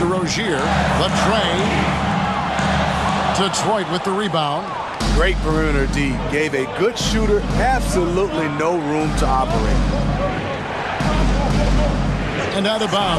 Rozier. The tray. Detroit with the rebound. Great perimeter D. Gave a good shooter absolutely no room to operate. And out of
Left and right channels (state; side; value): identical; both; correlation 1.00